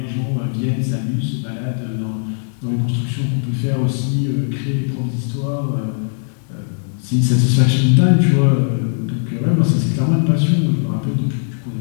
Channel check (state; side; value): silent; right; digital silence